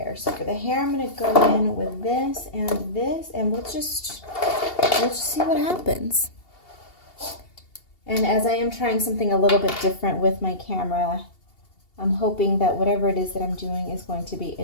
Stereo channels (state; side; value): late; right; 2.8 ms